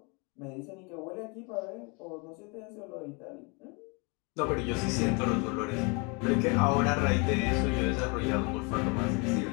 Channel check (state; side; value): quieter; right; 31.4 dB